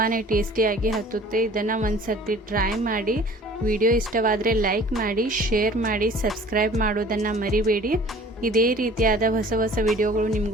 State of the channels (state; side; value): normal; both; correlation 0.49